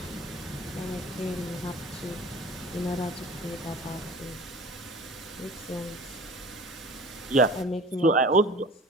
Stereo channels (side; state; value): both; normal; correlation 0.42